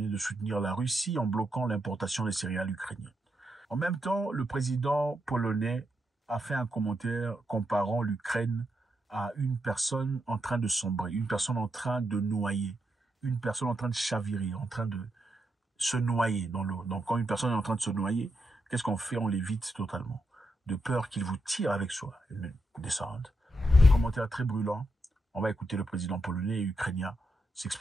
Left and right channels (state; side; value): normal; both; correlation 0.83